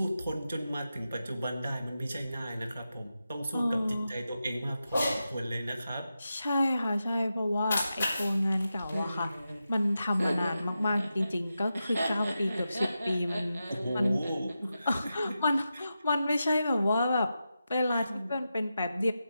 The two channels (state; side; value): inverted; both; correlation -0.90